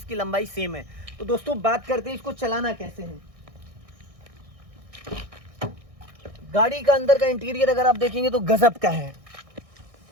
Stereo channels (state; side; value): late; left; 1.6 ms